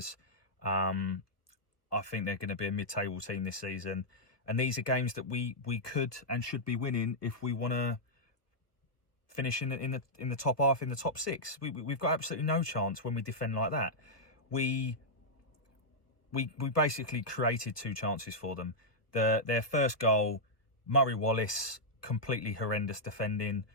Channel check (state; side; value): late; right; 1.2 ms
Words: I think they're going to be a mid-table team this season. And these are games that we could and should be winning if we want to finish in the top half, in the top 6. We've got absolutely no chance when we defend like that. We basically created 2 chances for them. Their first goal, Murray Wallace, completely horrendous defending.